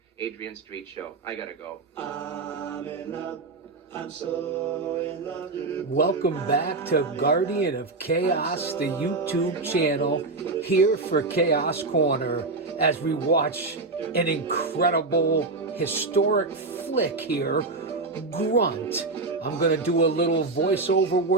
Adrian Street Show. I gotta go. I'm in love. I'm so in love. Welcome back to Guardian of Chaos, the YouTube channel, here for Chaos Corner, as we watch an incredible, historic flick here, Grunt. I'm going to do a little voiceover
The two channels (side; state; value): left; quieter; 3.6 dB